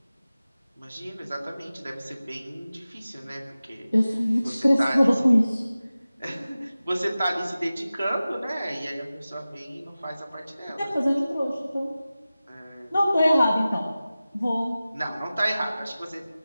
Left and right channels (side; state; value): both; inverted; correlation -0.96